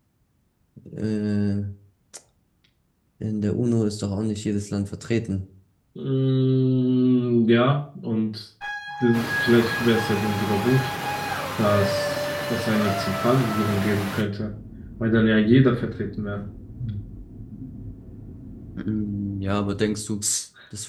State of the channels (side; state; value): both; identical; correlation 1.00